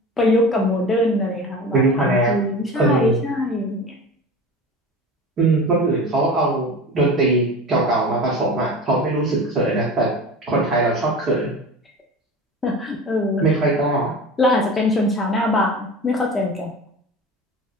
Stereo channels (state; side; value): normal; both; correlation 0.33